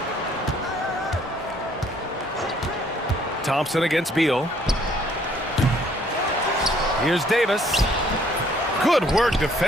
Thompson against Beal. Here's Davis. Good work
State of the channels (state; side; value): normal; both; correlation 0.63